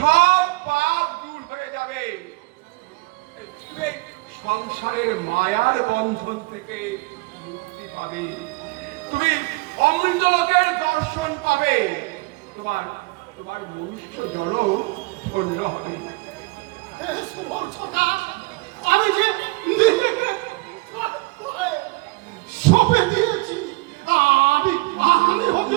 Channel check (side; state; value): left; quieter; 24.8 dB